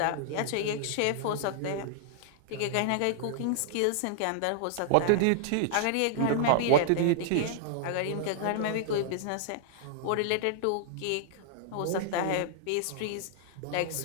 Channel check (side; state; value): both; different; correlation -0.01